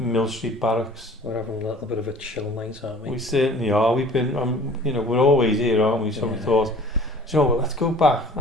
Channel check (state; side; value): normal; both; correlation 0.48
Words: Street Barracks. We're having a little bit of a chill night, aren't we? We certainly are. We've been, we're always here, aren't we? So we thought, let's go back,